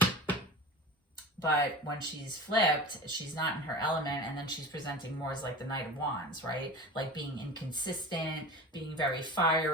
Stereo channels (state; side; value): normal; both; correlation 0.32